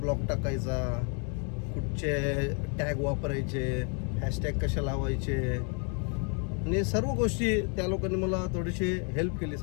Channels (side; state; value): right; quieter; 38.8 dB